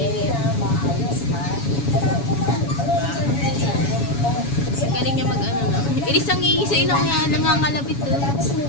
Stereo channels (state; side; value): late; right; 7.1 ms